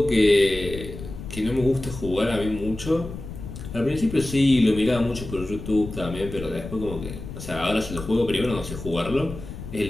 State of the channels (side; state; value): left; noise; rumble, 11 dB below the sound